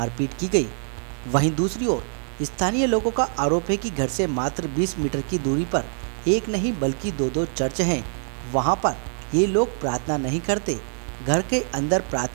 की गई। वहीं दूसरी ओर स्थानीय लोगों का आरोप है कि घर से मात्र 20 मीटर की दूरी पर एक नहीं बल्कि दो चर्च हैं। वहां पर ये लोग प्रार्थना नहीं करते। घर के अंदर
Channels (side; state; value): left; silent; 62 dB below the other